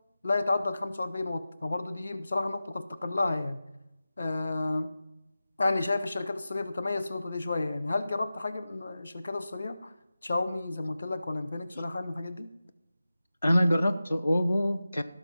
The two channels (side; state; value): both; inverted; correlation -0.94